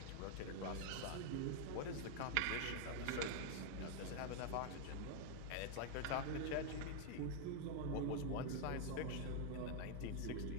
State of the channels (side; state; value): both; different; correlation 0.00